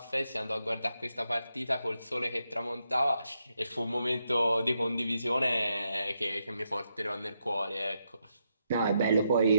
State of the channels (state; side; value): inverted; both; correlation -0.81